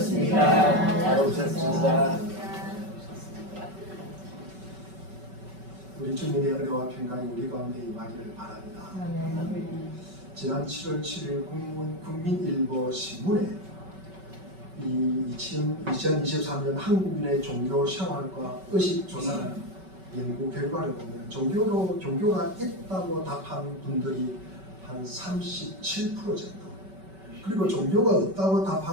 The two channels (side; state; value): left; late; 5.3 ms